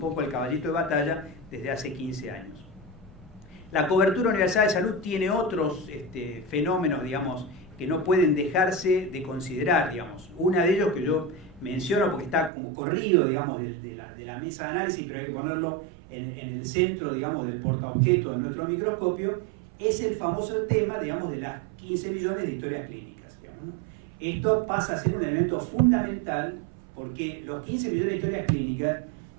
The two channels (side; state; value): left; drops out; at 12.5 s